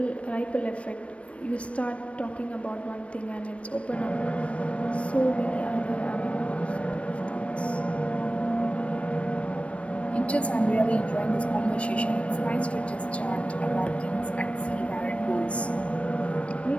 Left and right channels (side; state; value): right; late; 0.062 ms